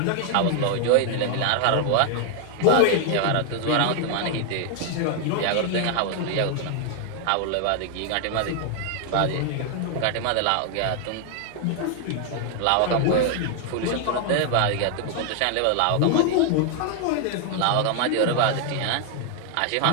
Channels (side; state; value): both; different; correlation 0.00